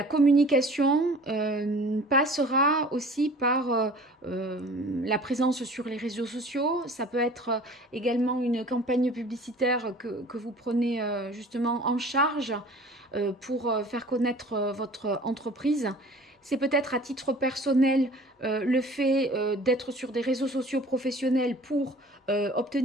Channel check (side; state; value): both; normal; correlation 0.46